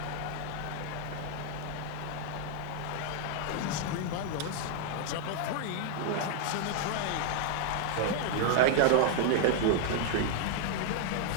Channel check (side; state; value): both; different; correlation 0.00